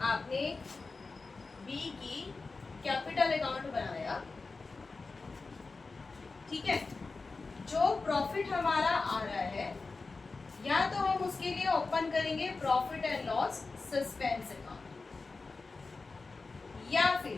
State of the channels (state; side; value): quieter; right; 3.9 dB